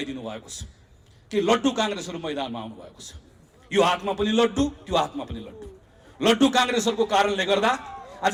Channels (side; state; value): both; identical; correlation 1.00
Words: भएको छ कि लड्डु काङ्ग्रेसहरू मैदानमा आउनु भएको छ। यो हातमा पनि लड्डु, त्यो हातमा पनि लड्डु। लड्डु काङ्ग्रेसहरूको कारणले गर्दा